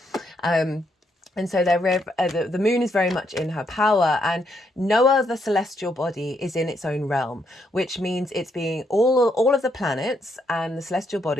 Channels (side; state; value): both; normal; correlation 0.76